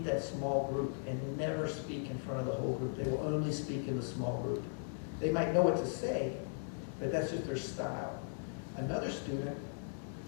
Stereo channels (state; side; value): silent; right; digital silence